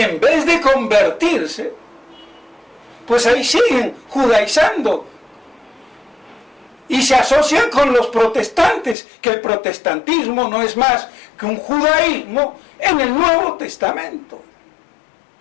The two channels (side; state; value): right; drops out; at 9.0 s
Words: en vez de convertirse, pues ahí siguen judaizando. Y se asocian con los protestantes, que el protestantismo no es más que un judaísmo en el Nuevo Testamento.